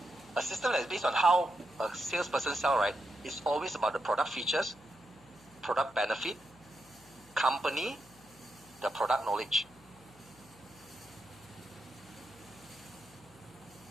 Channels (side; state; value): left; noise; hum, 26 dB below the sound